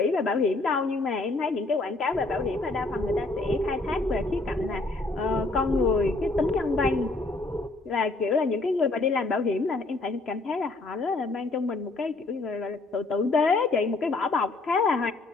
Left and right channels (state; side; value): quieter; right; 3.3 dB